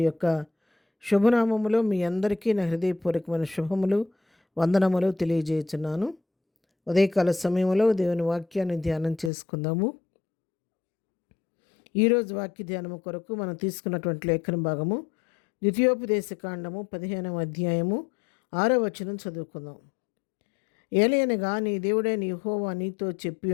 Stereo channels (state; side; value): drops out; right; at 9.3 s